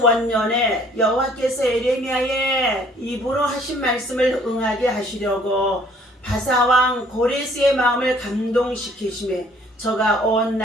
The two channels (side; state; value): both; normal; correlation 0.58